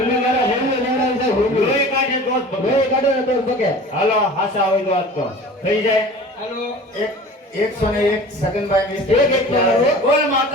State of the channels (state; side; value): normal; both; correlation 0.40